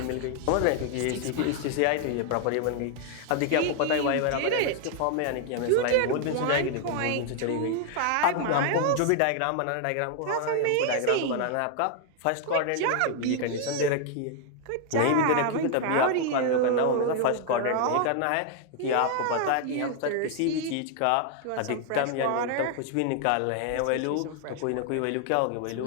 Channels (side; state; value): both; different; correlation 0.00